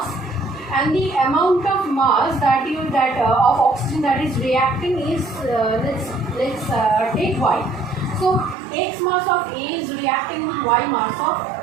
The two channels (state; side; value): drops out; left; at 8.6 s